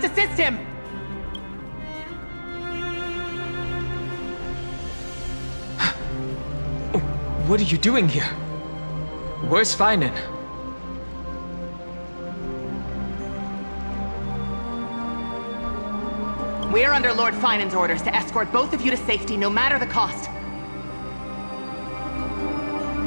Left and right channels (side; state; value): both; inverted; correlation -1.00